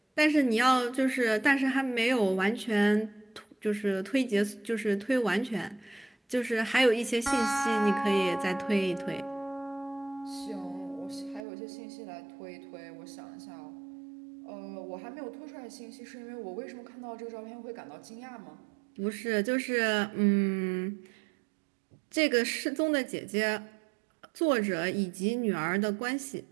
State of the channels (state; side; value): drops out; left; at 11.4 s